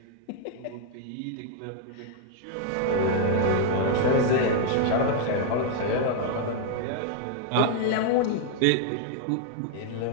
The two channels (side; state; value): both; different; correlation 0.00